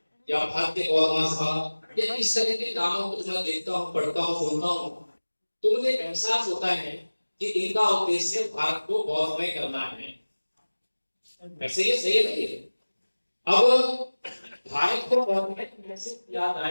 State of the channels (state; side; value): inverted; both; correlation -1.00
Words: या भारतीय गौर महासभा या इस तरह के नामों को मैं देखता हूँ, पढ़ता हूँ, सुनता हूँ, तो मुझे एहसास होता है कि इनका उद्देश्य भारत को गौरवमय करना है। वैसे ये सही नहीं है। अब भारत को गौरवमय कैसे किया